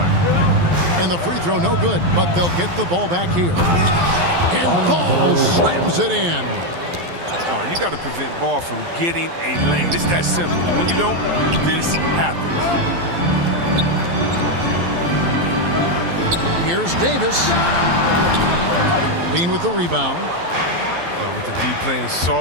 And the free throw no good, but they'll get the ball back here. And Ball slams it in. Oh, you got to prevent Ball from getting a lane. It's that simple. When you don't, this happens. Here's Davis. Bean with the rebound. With the D playing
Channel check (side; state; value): left; late; 12 ms